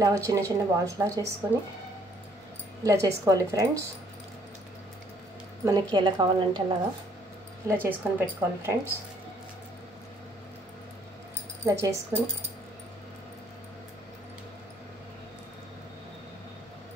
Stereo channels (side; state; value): both; normal; correlation 0.64